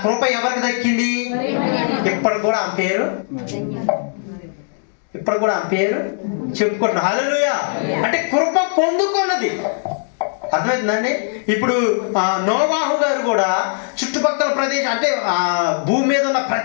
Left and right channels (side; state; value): right; silent; digital silence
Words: కృప ఎవరికి దక్కింది? ఇప్పుడు కూడా ఆమె పేరు చెప్పుకుంటున్నా. హల్లెలూయా. అంటే కృప పొందుకున్నది. అర్థమవుతుందండి? ఇప్పుడు నోవాహు గారు కూడా చుట్టుపక్కల ప్రదేశం అంటే భూమి మీద ఉన్న